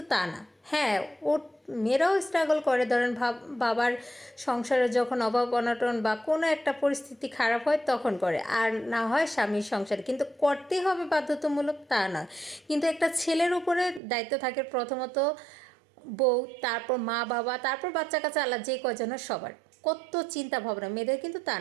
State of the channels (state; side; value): drops out; left; at 14.0 s